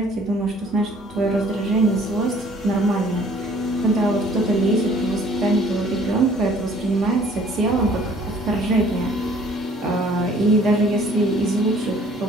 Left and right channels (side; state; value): both; normal; correlation 0.56